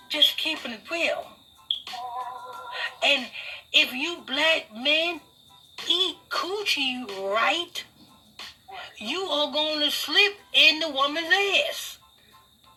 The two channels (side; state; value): both; identical; correlation 1.00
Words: Just keeping it real. And if you black men eat coochie right, you are going to slip in the woman's ass.